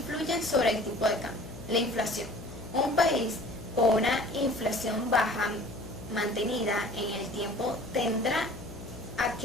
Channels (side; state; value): left; noise; hum, 14 dB below the sound